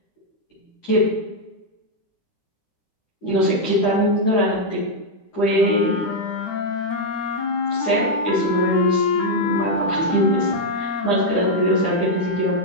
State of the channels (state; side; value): late; right; 9.8 ms